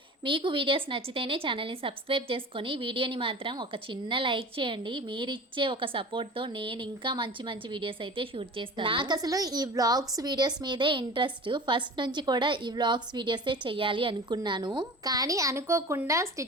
మీకు వీడియోస్ నచ్చితేనే ఛానల్ని సబ్స్క్రైబ్ చేసుకొని వీడియోని మాత్రం ఒక చిన్న లైక్ చేయండి. మీరిచ్చే ఒక సపోర్ట్తో నేను ఇంకా మంచి మంచి వీడియోస్ అయితే షూట్ చేస్తాను. నాకు అసలు ఈ వ్లాగ్స్ వీడియోస్ మీదే ఇంట్రెస్ట్. ఫస్ట్ నుంచి కూడా ఈ వ్లాగ్స్ వీడియోసే చెయ్యాలి అనుకున్నాను, కానీ అనుకోకుండా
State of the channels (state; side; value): normal; both; correlation 0.37